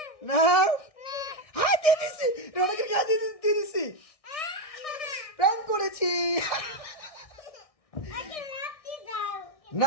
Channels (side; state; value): right; late; 1.6 ms